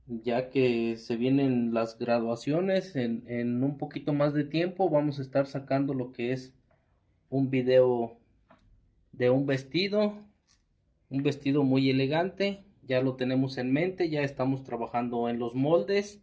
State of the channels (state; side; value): identical; both; correlation 1.00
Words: ya que se vienen las graduaciones. En un poquito más de tiempo vamos a estar sacando lo que es un video de un vestido muy elegante. Ya lo tenemos en mente, ya estamos trabajando en los moldes